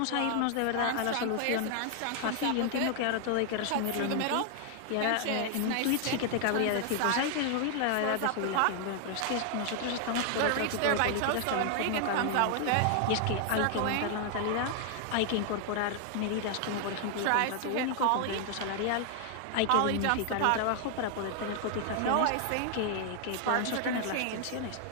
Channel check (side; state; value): both; different; correlation 0.00